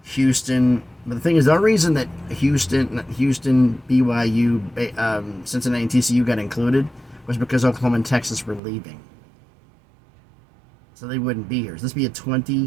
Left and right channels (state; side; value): drops out; left; at 8.6 s